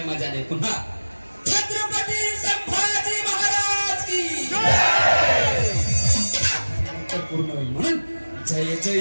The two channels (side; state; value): both; inverted; correlation -1.00